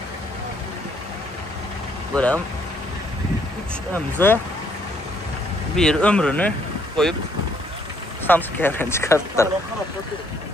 Buram 3 MZ bir ömrünü koyup Samsung çıkarttılar.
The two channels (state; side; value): normal; both; correlation 0.68